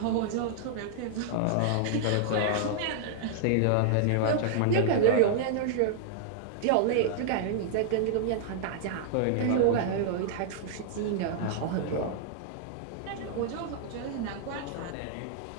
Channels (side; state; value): both; different; correlation -0.01